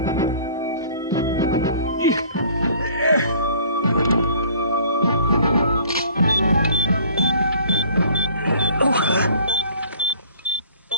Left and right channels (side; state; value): both; inverted; correlation -0.52